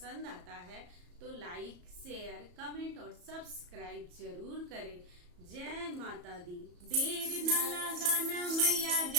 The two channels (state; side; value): late; left; 34 ms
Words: आता है तो लाइक, शेयर, कमेंट और सब्सक्राइब जरूर करें। जय माता दी। देर न लगाना मैया